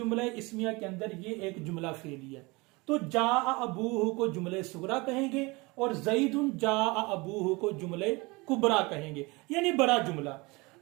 इस्मिया के अंदर ये एक जुमला फेली है। तो जा अबूहु को जुमले सुगरा कहेंगे और ज़ैदुन जा अबूहु को जुमले कुबरा कहेंगे, यानी बड़ा जुमला।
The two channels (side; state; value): left; quieter; 24.9 dB